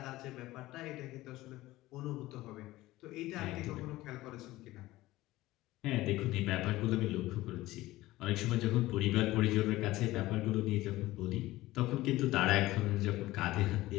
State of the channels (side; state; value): right; quieter; 17.5 dB